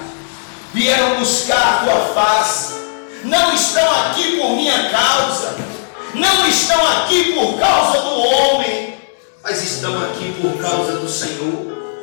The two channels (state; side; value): silent; right; digital silence